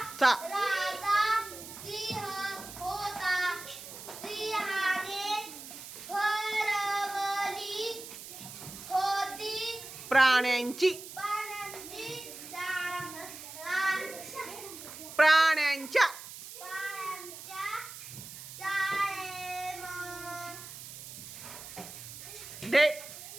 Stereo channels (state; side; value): noise; right; hiss, 12 dB below the sound